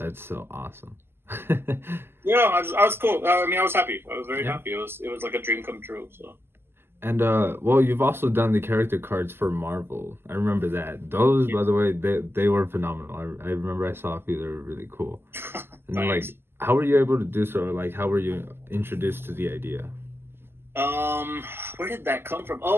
so awesome. Yeah, I was cool. I was happy. I was very happy. It was like a dream come true. So. And well, you've also done the character cards for Marvel. I remember that. Those, by the way, they were phenomenal. I remember I saw a few. They were really cool. And then, like, how were you able to do so? Or, like, how were you introduced to the idea? Where did that come from?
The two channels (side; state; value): left; late; 0.11 ms